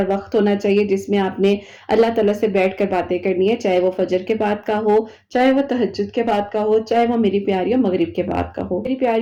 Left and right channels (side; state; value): both; identical; correlation 1.00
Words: وقت ہونا چاہیے جس میں آپ نے اللہ تعالیٰ سے بیٹھ کر باتیں کرنی ہے، چاہے وہ فجر کے بعد کا ہو، چاہے وہ تہجد کے بعد کا ہو، چاہے وہ میری پیاریوں مغرب کے بعد کا ہو۔ میری